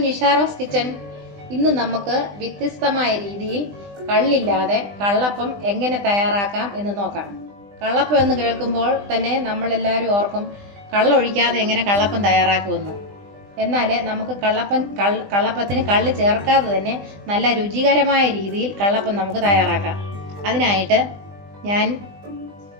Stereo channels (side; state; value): left; late; 20 ms